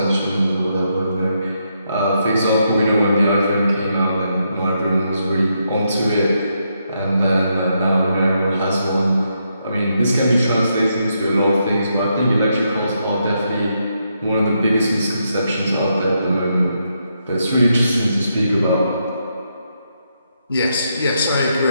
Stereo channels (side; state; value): both; inverted; correlation -0.80